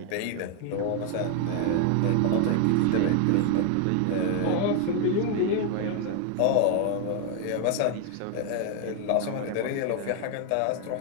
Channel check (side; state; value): both; different; correlation 0.00